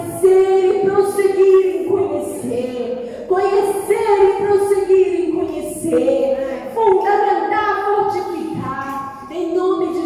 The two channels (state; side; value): identical; both; correlation 1.00